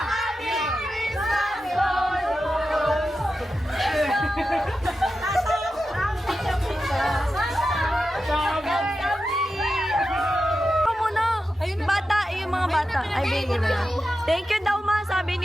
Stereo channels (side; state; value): both; normal; correlation 0.90